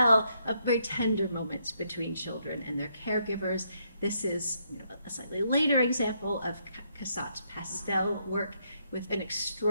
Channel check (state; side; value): inverted; both; correlation -0.75